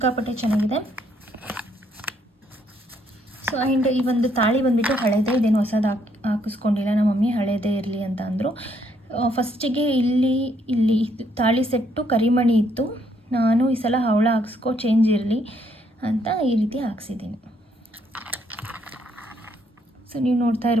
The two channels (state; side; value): normal; both; correlation 0.71